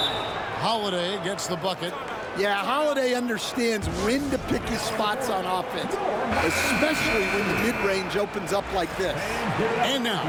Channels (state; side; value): identical; both; correlation 1.00